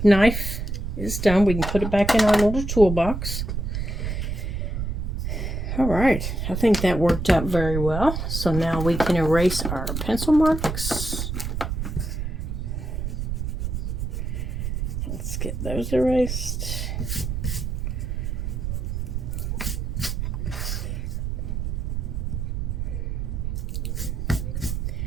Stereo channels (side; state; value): right; noise; rumble, 2 dB below the sound